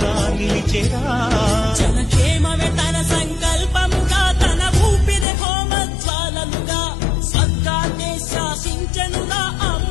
నిలిచెరా జనక్షేమమే తన సంకల్పముగా తన ఊపిరి హోమజ్వాలలుగా స్వర్గాన్ని శాసించెనురా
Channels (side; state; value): right; drops out; at 5.2 s